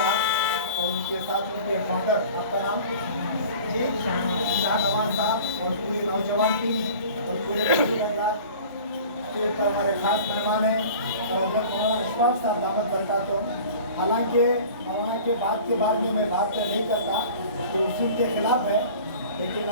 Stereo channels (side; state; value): both; inverted; correlation -0.42